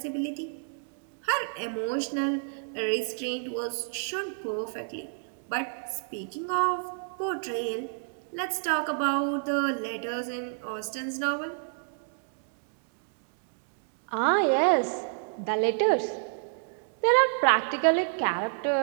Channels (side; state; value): left; silent; digital silence